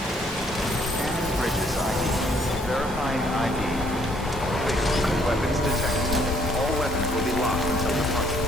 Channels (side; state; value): both; normal; correlation 0.65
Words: Bridges ID. Verifying ID. Clear. Weapons detected. All weapons will be locked until departure.